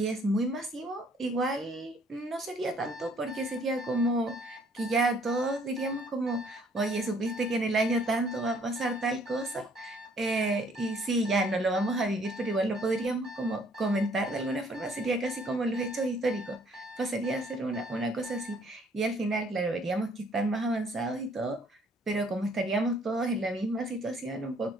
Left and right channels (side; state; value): both; normal; correlation 0.62